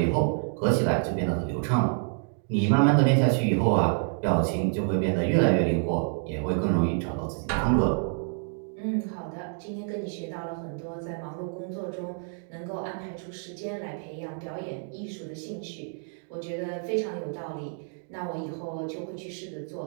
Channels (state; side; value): silent; left; 55 dB below the other